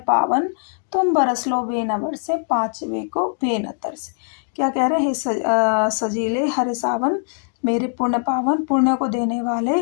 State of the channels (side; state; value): right; silent; digital silence